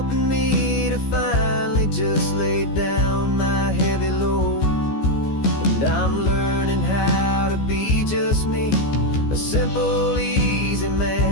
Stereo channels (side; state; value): right; late; 14 ms